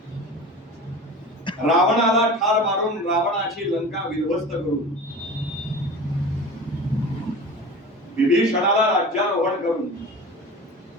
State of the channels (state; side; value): normal; both; correlation 0.35